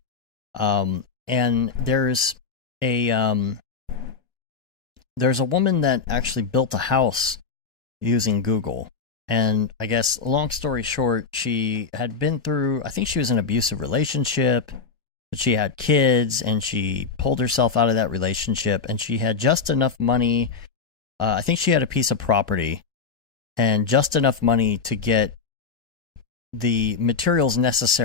And there's a woman that actually built a house using Google. And I guess, long story short, she had been through, I think she was in an abusive relationship, but she had kids, and she pulled herself out of that relationship, and she had just enough money I think she had a piece of property and just enough money to get the materials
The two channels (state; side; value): quieter; right; 5.2 dB